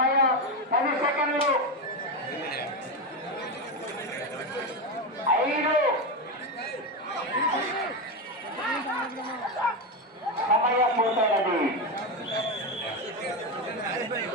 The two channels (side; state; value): both; normal; correlation 0.13